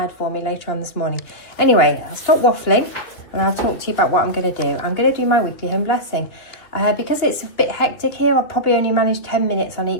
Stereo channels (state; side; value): late; right; 2.9 ms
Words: for me later on this morning. Anyway, I'll stop waffling and I'll talk to you about what I'm going to do. I'm going to do my weekly home blessing. Because it's a bit hectic here, I'll probably only manage 10 minutes on